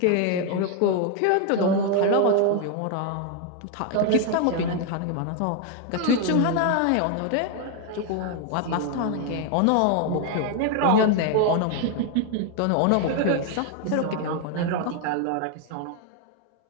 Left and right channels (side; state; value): both; different; correlation 0.01